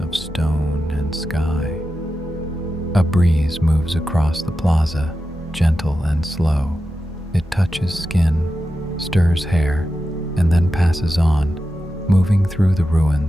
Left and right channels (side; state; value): both; normal; correlation 0.91